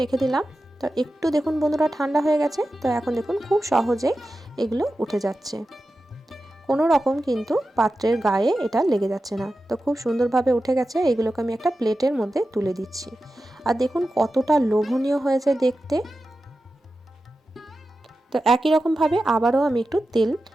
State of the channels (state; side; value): normal; both; correlation 0.92